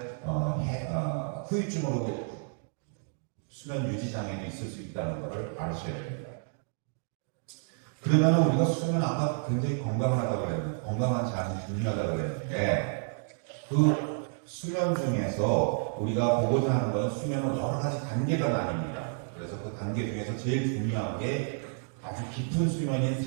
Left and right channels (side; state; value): left; silent; 58 dB below the other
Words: 후유증으로 수면 유지 장애도 있을 수 있다는 것을 아셔야 됩니다. 그러면 우리가 수면 아까 굉장히 건강하다고 그랬는데 건강한 잠이 중요하다고 그랬는데 그 수면 중에서 우리가 보고자 하는 것은 수면은 여러 가지 단계가 나뉩니다. 그래서 그 단계 중에서 제일 중요한 게 아주 깊은 수면인